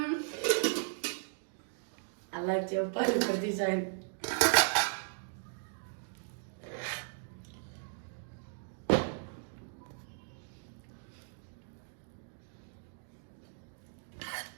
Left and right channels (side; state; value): left; silent; digital silence